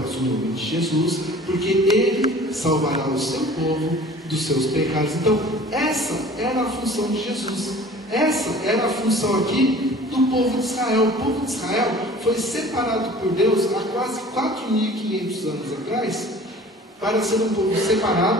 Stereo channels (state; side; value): normal; both; correlation 0.46